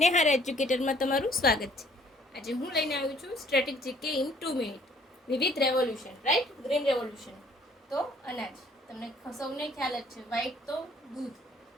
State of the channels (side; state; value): both; normal; correlation 0.59